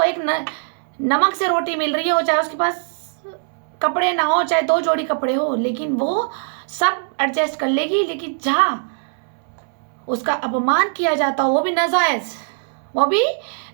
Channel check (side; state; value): left; silent; 65 dB below the other